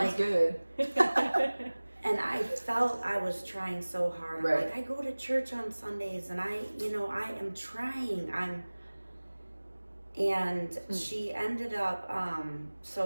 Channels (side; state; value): both; inverted; correlation -1.00